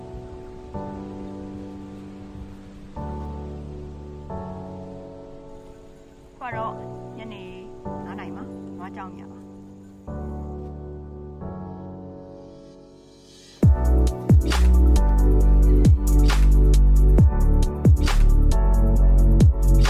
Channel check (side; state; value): both; identical; correlation 1.00